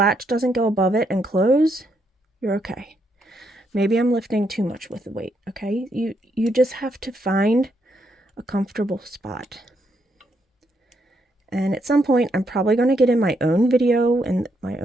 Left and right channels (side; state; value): both; normal; correlation 0.77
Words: doesn't go above it and close, you're okay. Maybe I'm lifting too much with the weight, okay? You just have to find a comfortable spot. And at some point, I'm probably going to get in my own video in my